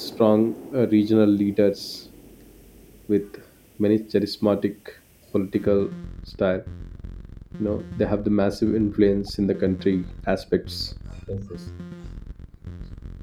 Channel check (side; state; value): both; identical; correlation 1.00